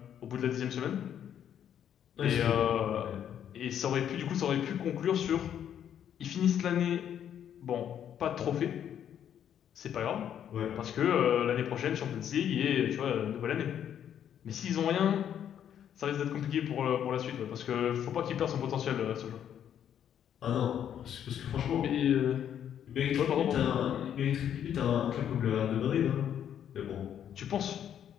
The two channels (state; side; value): quieter; right; 9.6 dB